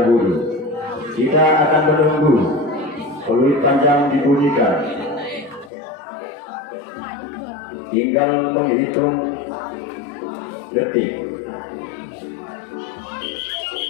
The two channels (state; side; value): drops out; right; at 5.7 s